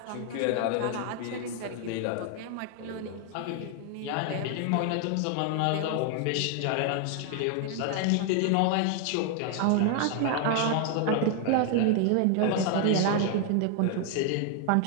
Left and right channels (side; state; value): both; different; correlation 0.00